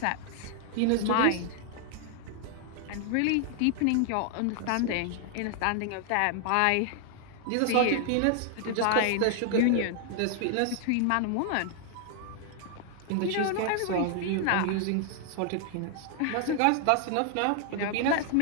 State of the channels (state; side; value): different; both; correlation 0.00